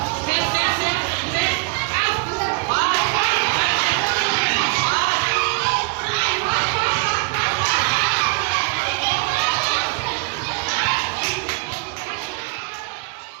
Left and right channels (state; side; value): quieter; left; 28.7 dB